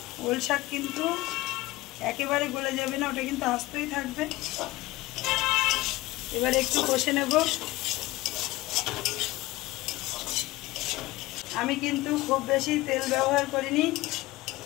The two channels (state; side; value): quieter; right; 19.2 dB